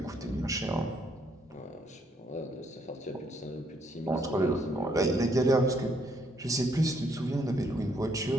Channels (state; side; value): normal; both; correlation 0.70